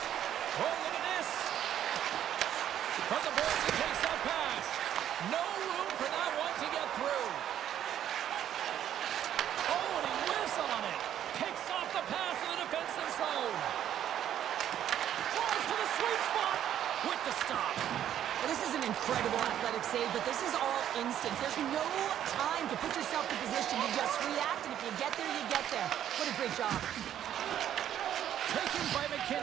Oh, look at this. From the boards, he takes that pass. No room for that one to get through. Oh, and he whiffs on it. Picks off the pass in the defensive zone. Drives to the sweet spot with the stop. Well, this is an incredible athletic save, but this is all instinct. There's no time to put yourself in position. You just react, and if you get there, you get there. What a great job. Taken by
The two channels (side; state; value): left; quieter; 10.7 dB